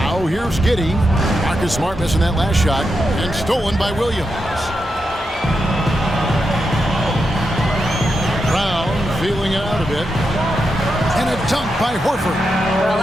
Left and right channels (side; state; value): both; normal; correlation 0.86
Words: Now here's Giddey. Marcus Smart missing that last shot. And stolen by Williams. Brown feeling it out a bit. And a dunk by Horford. Well,